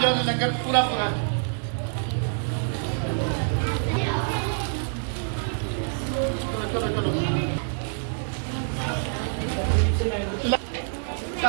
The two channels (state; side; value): silent; left; digital silence